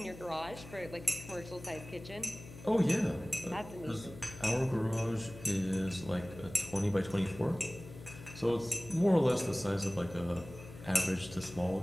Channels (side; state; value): left; noise; hum, 15 dB below the sound